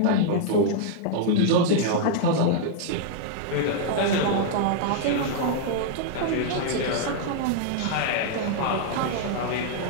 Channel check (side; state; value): both; different; correlation -0.01